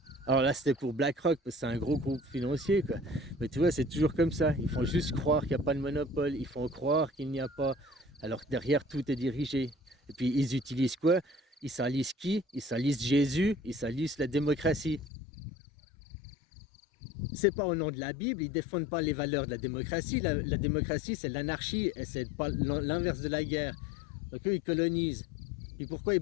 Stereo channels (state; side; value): drops out; right; at 15.1 s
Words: Alors là, c'était pour BlackRock, parce que c'est un gros groupe financier, quoi. Mais tu vois, c'est toujours comme ça. Ils font juste croire qu'il n'y a pas de monopole. Ils font croire qu'il n'y a pas... Alors que derrière, tout est dirigé. Et puis, ils utilisent quoi? Ils salissent qui? Ils salissent Jésus. Ils salissent la démocratie. C'est pas au nom de la Bible. Ils défendent pas les valeurs de la démocratie. La démocratie, c'est l'anarchie. Et c'est pas l'inverse de la guerre. Donc eux, ils colonisent. Et pourquoi ils